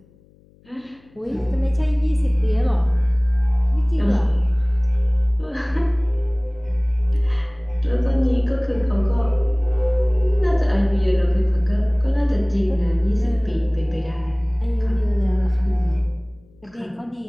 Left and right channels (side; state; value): left; noise; hum, 30 dB below the sound